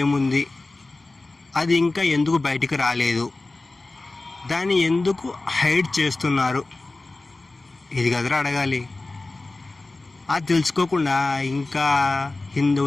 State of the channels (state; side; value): quieter; right; 3.2 dB